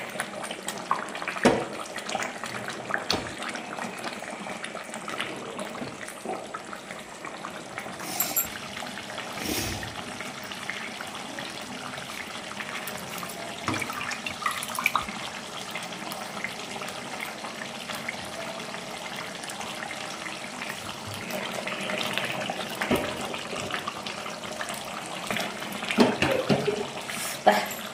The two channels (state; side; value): identical; both; correlation 1.00